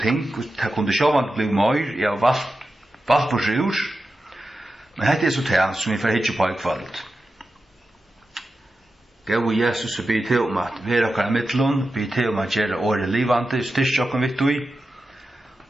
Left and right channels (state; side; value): normal; both; correlation 0.92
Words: ting, og det kunne sjåvand bli mer, jeg har valgt på sjur, men dette er så det som vi får hitje på i kveld. Gau Jesus be til om at vera okkar mittlun, be til om at gjera året livande, styrst okkar vittu i,